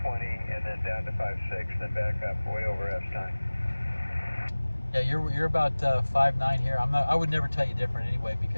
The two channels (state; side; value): inverted; both; correlation -1.00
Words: 20, and then down to 5.6, then back up way over S9. Yeah, you're about 5'9" here. I would never tell you different anyway,